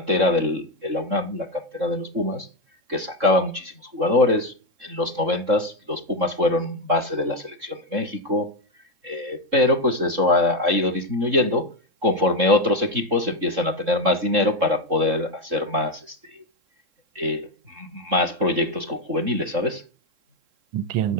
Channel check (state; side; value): late; left; 3.7 ms